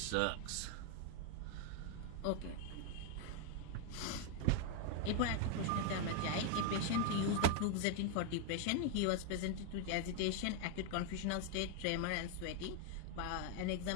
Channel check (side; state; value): both; different; correlation 0.00